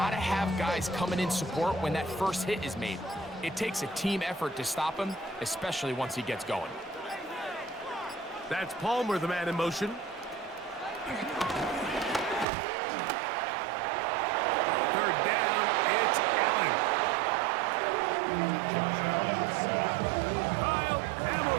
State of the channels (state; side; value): drops out; left; at 12.5 s